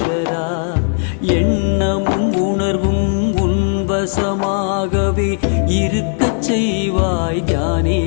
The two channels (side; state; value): right; silent; 68 dB below the other